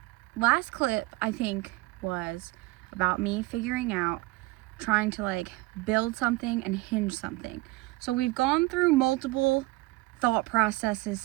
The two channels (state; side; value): quieter; left; 21.3 dB